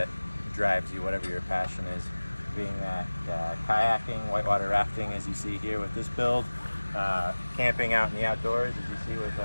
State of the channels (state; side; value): inverted; both; correlation -1.00